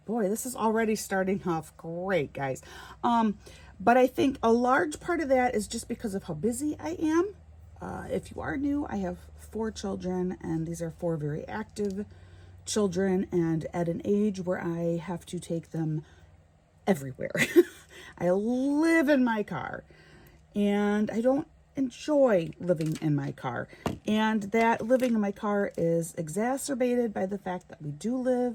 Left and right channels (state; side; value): identical; both; correlation 1.00